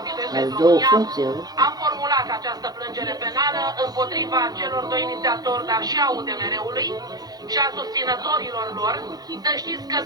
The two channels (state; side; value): late; left; 0.19 ms